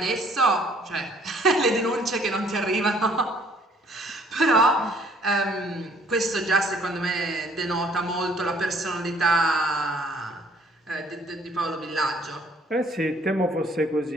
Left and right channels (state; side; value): normal; both; correlation 0.60